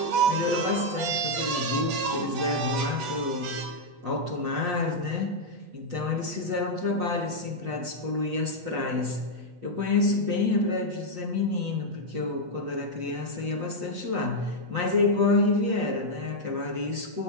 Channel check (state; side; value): late; left; 8.2 ms